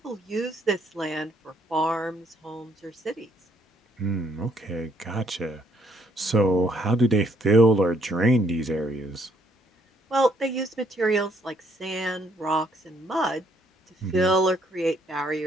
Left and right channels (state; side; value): normal; both; correlation 0.69